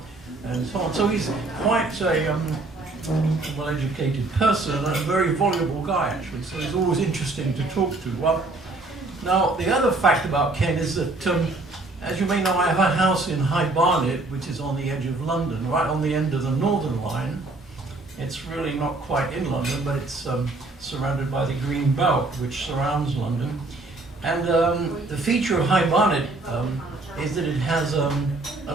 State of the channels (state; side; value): quieter; left; 3.0 dB